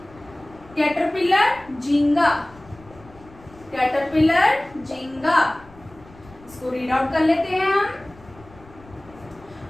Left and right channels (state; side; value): noise; left; rumble, 23 dB below the sound